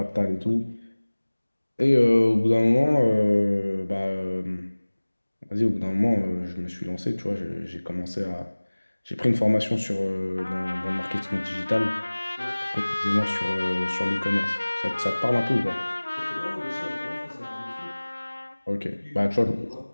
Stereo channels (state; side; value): inverted; both; correlation -1.00